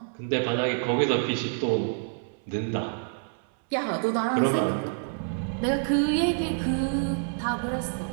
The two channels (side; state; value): left; silent; 60 dB below the other